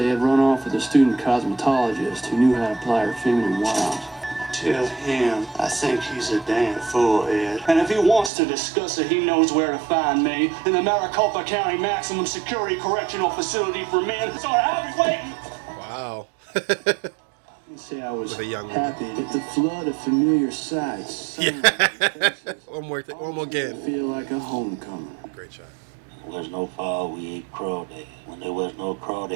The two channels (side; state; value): left; drops out; at 8.3 s